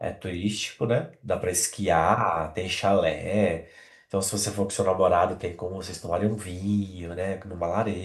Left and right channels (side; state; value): both; identical; correlation 1.00